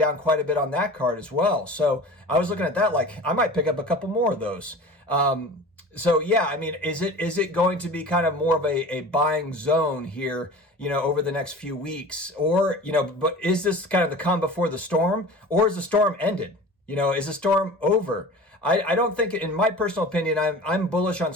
quite a bit on that card as well. So I was looking at that like I might pick up a couple more of those. So yeah, I mean, is it going to be kind of more of a buying zone here, over the next few weeks? Or, but is this kind of the calm before the storm, or is the storm ended? Is the storm over? I don't think, in my personal opinion, I'm bullish on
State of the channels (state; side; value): normal; both; correlation 0.38